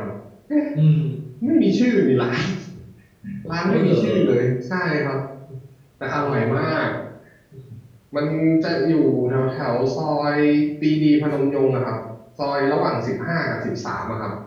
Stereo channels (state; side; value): identical; both; correlation 1.00